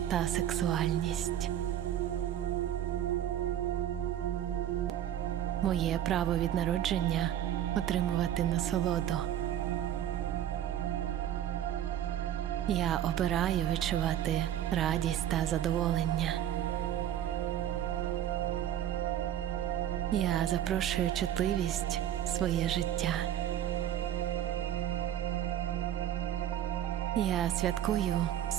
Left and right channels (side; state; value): left; quieter; 11.0 dB